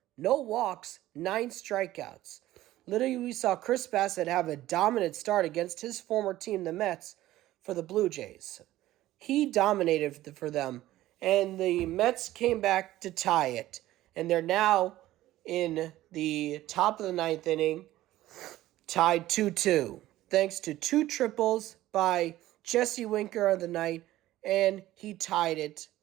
no walks, 9 strikeouts. Literally, we saw Chris Bassett have a dominant start against his former team, the Mets, for the Blue Jays. He dominated for them, and the Mets came back to tie it. And they're now in the top of the ninth inning, tied 2-2, thanks to 2 triples by Jesse Winker on the night, and he tied it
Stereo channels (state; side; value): quieter; left; 15.3 dB